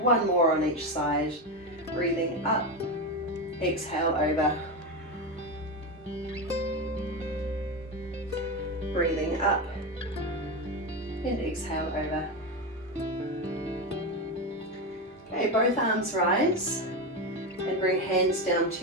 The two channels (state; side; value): normal; both; correlation 0.15